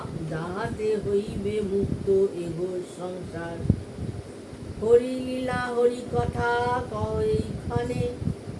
যাহাতে হইবে মুক্ত এ ঘোর সংসার। হরি লীলা হরি কথা কহ এইখানে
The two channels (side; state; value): both; identical; correlation 1.00